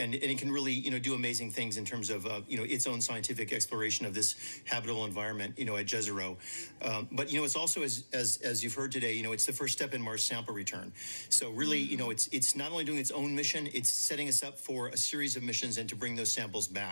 can really, do amazing things in terms of, its own scientific exploration of this habitable environment, at Jezero. But, it's also, as you've heard today, it's the first step in Mars sample return. So really, it's not only doing its own mission, it's setting us up for a series of missions and to bring those samples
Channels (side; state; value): both; inverted; correlation -1.00